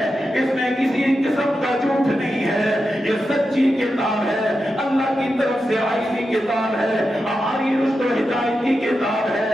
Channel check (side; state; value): both; normal; correlation 0.89